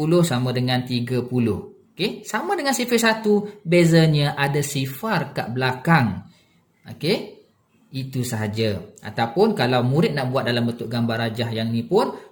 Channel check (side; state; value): both; identical; correlation 1.00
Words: sama dengan 30. Okey, sama dengan sifir 1, bezanya ada sifar kat belakang. Okey, itu sahaja. Ataupun kalau murid nak buat dalam bentuk gambar rajah yang ni pun